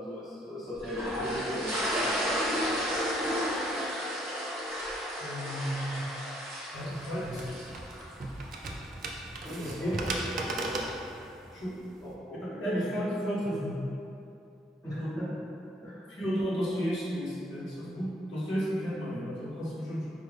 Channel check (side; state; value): both; normal; correlation 0.67